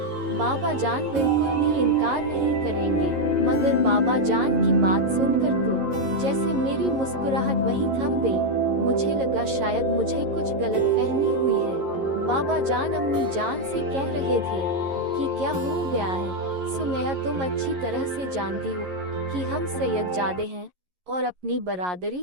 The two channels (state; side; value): late; left; 11 ms